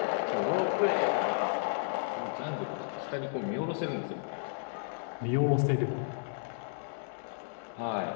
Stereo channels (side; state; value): right; silent; digital silence